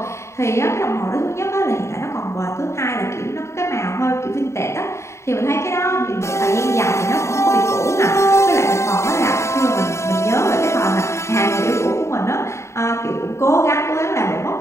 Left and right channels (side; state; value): right; late; 0.14 ms